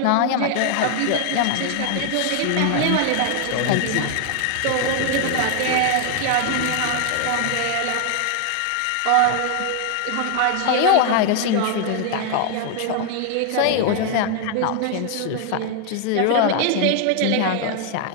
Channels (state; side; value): different; both; correlation 0.00